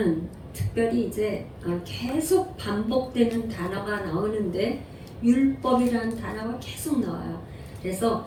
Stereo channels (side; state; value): both; identical; correlation 1.00